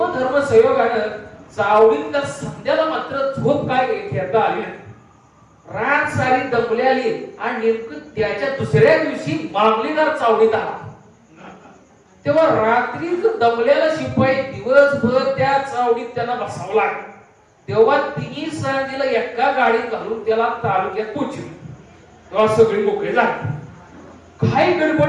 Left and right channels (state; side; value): identical; both; correlation 1.00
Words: संयोगानं चावडीत तर संध्याला मात्र झोप काय घेता आली. रात सारी दमल्याली आणि नेमकं त्याच्या दुसऱ्या दिवशी मामलेदार चावडीत आला. तेव्हा रात्री दमल्याला शिपाई दिवसभर त्या चावडीत त्यांना बसावं लागलं. तेव्हा तिन्ही सांजेला एका गाडीत घालून त्याला तालुक्यात पोहोचली. तेव्हा सगळी मोकळे झाले. काही